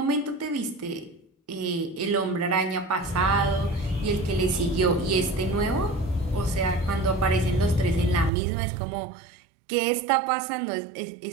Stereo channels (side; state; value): left; drops out; at 8.3 s